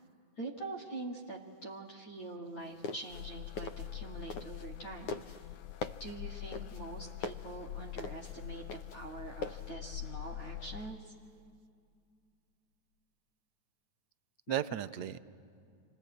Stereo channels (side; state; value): right; late; 9.6 ms